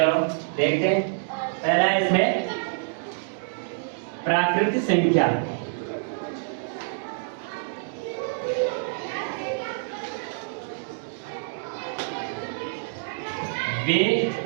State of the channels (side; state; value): left; silent; digital silence